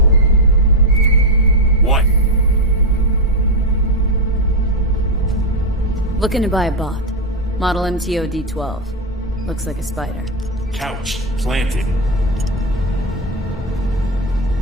What? Looking to buy a bot. Model MTO D12. Looks like a spider. Couch planted.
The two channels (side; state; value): both; normal; correlation 0.07